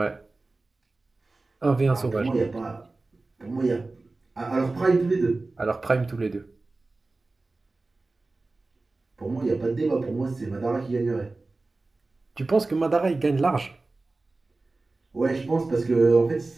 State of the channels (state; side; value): quieter; left; 3.3 dB